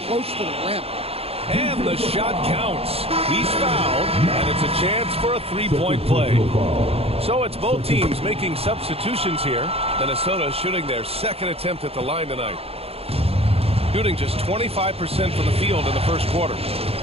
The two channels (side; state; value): left; late; 0.29 ms